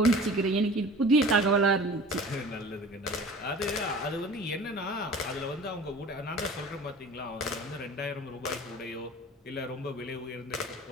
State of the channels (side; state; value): both; normal; correlation 0.42